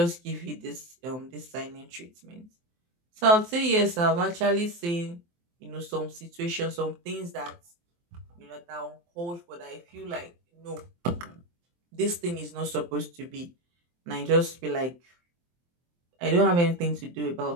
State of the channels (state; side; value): late; left; 23 ms